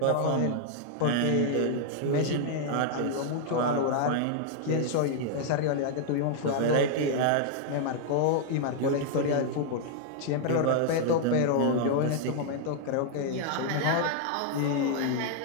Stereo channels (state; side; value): different; both; correlation -0.01